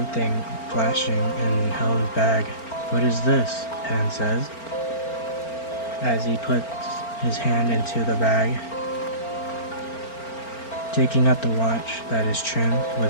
flashing in Helen's bag. "What is this?" Hen says, as he puts his hand into the bag, taking out the watch that is trimmed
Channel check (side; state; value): right; late; 4.4 ms